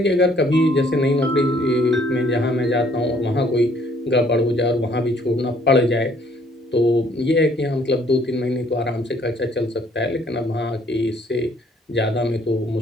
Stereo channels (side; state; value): both; normal; correlation 0.63